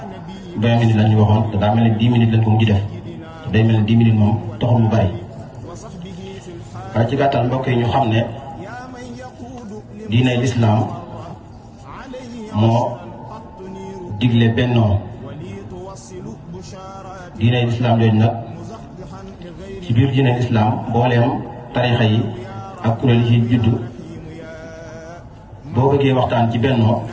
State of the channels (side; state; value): both; identical; correlation 1.00